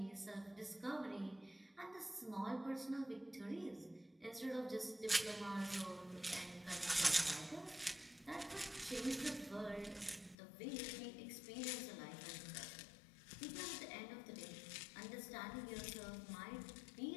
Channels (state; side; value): drops out; right; at 10.4 s